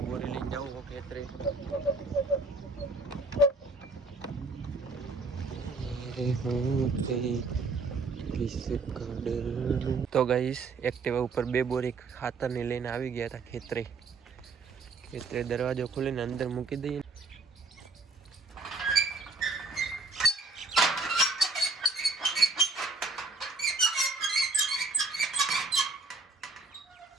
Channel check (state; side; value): quieter; left; 3.6 dB